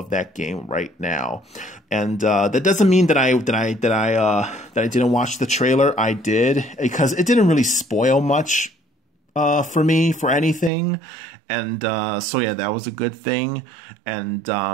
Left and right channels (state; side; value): drops out; left; at 10.7 s